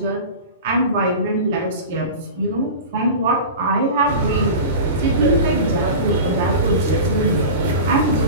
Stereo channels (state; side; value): inverted; both; correlation -0.31